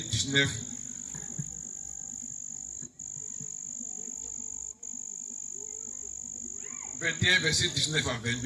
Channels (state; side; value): identical; both; correlation 1.00